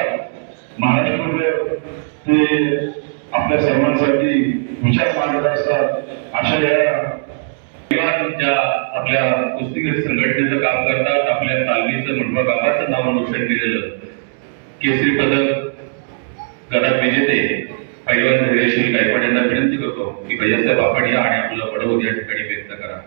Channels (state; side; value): silent; left; 67 dB below the other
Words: महाराष्ट्रामध्ये ते आपल्या सर्वांसाठी विचार मांडत असतात. अशा या ज्या आपल्या कुस्तीगीर संघटनेचं काम करतात, आपल्या तालमीचं मुंडवा गावाचं नाव रोशन केलेलं केसरी पदक गदा विजेते पैलवान धैर्यशील गायकवाड यांना विनंती करतो की भैयासाहेब आपण या आणि आपलं पडवत या ठिकाणी व्यक्त करा.